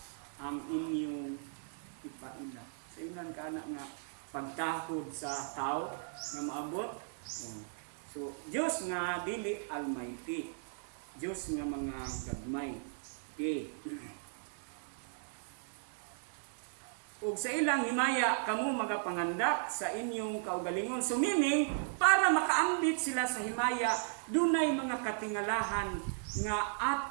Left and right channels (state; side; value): silent; left; digital silence